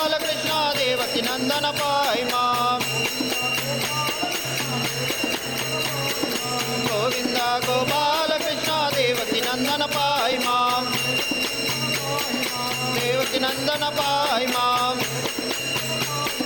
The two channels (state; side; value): noise; right; rumble, 21 dB below the sound